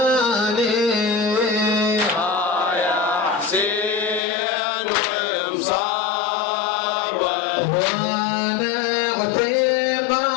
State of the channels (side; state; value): right; drops out; at 4.2 s